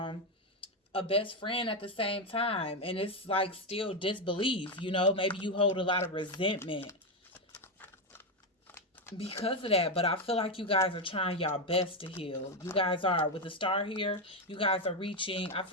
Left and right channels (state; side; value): normal; both; correlation 0.08